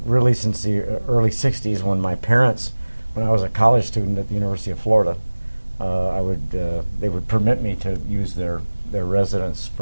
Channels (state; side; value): inverted; both; correlation -1.00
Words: since the early 60s when my parents, when I was a college student at the University of Florida, they would permit me to use their residence